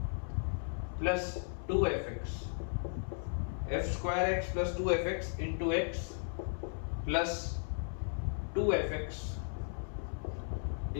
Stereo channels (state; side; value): silent; right; 54 dB below the other